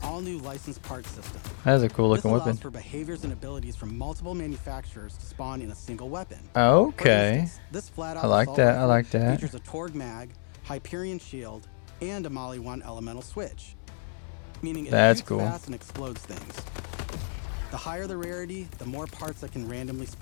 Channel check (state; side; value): silent; right; digital silence